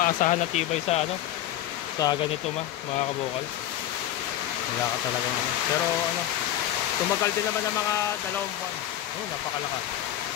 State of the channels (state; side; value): quieter; right; 12.6 dB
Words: na tibay sa ano, sa ganito mga kabukal. Wala ka talaga ano. Pero ano, tumagal din naman ng mga 2 buwan. Oh, napakalakas.